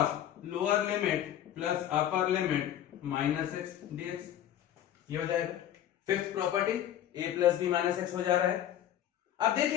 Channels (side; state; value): right; quieter; 11.3 dB